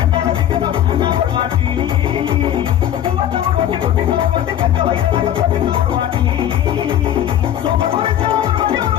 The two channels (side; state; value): right; quieter; 11.0 dB